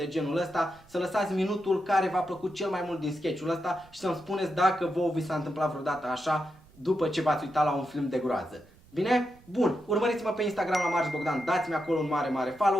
genul ăsta, să lăsați minutul care v-a plăcut cel mai mult din sketch-ul ăsta și să-mi spuneți dacă vouă vi s-a întâmplat vreodată așa după ce v-ați uitat la un film de groază. Bine? Bun, urmăriți-mă pe Instagram la Marș Bogdan, dați-mi acolo un mare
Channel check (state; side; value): noise; right; rumble, 26 dB below the sound